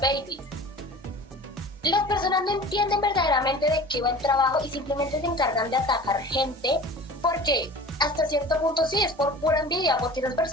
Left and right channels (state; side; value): normal; both; correlation 0.39